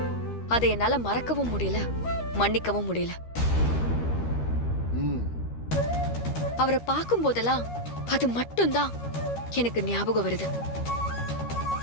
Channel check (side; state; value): right; late; 13 ms